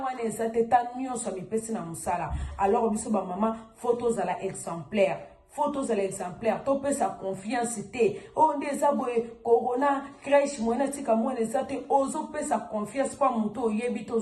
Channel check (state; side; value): identical; both; correlation 1.00